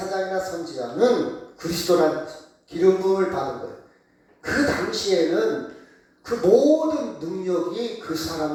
선지자는 그리스도란 기름 부음을 받은 거예요. 그 당시에는 그 모든 능력이 그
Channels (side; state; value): both; identical; correlation 1.00